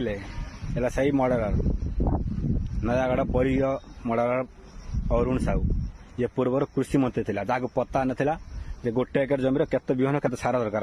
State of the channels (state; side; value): identical; both; correlation 1.00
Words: एला सही मर्डरर नयागढ़ परिय मर्डरर अरुण साहू ये पूर्व कृषि मंत्री थिला जाको पता नथिला जे गोटे एकर जमीर केते बिहन केते सारा दरकार